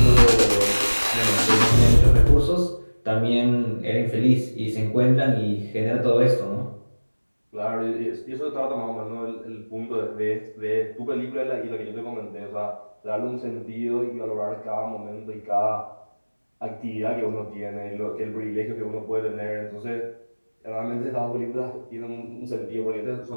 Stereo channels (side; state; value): both; inverted; correlation -1.00